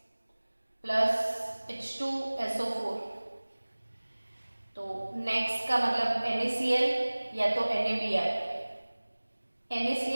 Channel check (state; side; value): inverted; both; correlation -1.00